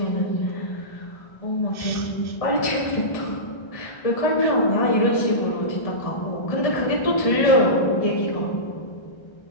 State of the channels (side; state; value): right; late; 1.3 ms